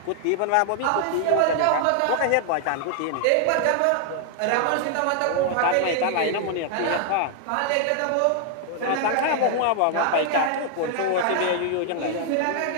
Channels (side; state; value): both; different; correlation 0.00